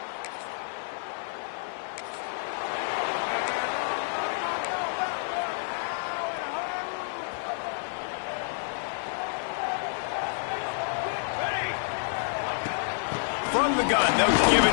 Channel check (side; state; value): right; silent; 59 dB below the other